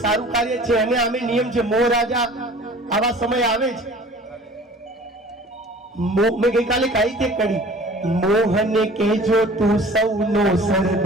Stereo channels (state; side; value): normal; both; correlation 0.46